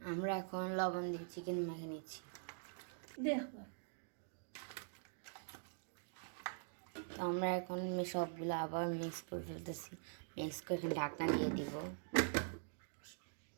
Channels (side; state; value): left; silent; digital silence